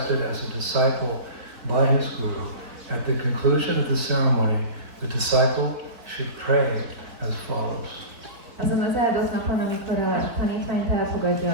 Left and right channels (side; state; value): left; late; 3.8 ms